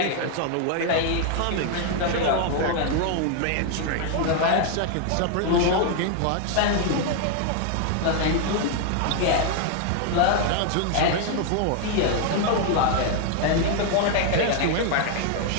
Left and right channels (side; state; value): both; different; correlation 0.00